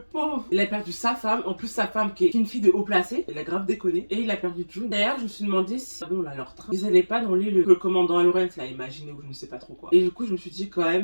Il a perdu sa femme, en plus sa femme qui est une fille de haut placé. Il a grave déconné. Et il a perdu June. D'ailleurs, je me suis demandé si, bon là, leur train, ils allaient pas dans l'île que le commandant Lawrence l'a imaginé ou je ne sais pas trop quoi. Et du coup, je me suis dit quand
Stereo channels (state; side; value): inverted; both; correlation -1.00